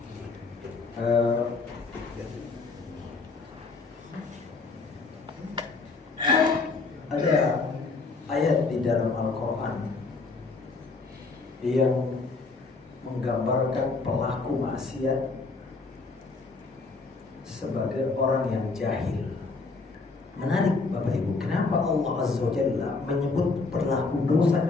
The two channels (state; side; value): quieter; right; 4.0 dB